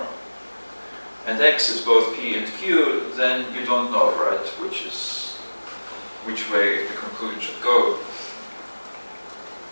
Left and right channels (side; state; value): both; inverted; correlation -1.00